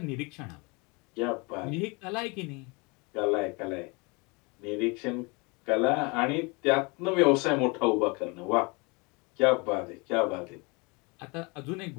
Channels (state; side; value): quieter; right; 28.6 dB